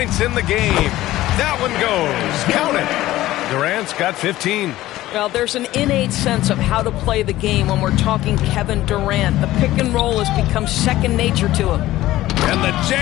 in the game. That one goes. Count it. Durant's got 15. Well, there's an innate sense of how to play the game when we're talking Kevin Durant. The pick and roll has become second nature to him. And the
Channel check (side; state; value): right; quieter; 15.7 dB